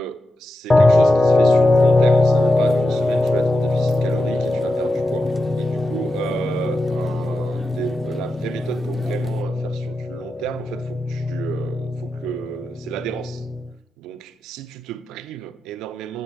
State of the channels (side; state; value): both; normal; correlation 0.89